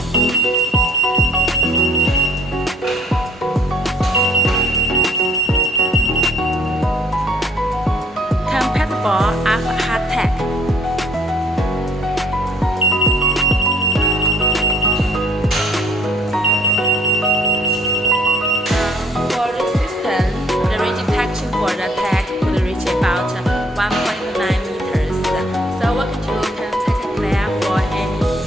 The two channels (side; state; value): both; normal; correlation 0.62